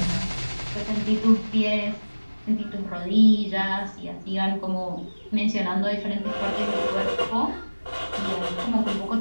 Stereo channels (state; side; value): inverted; both; correlation -1.00